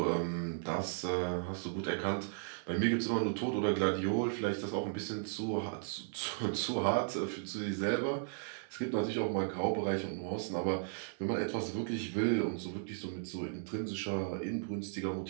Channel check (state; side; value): silent; left; digital silence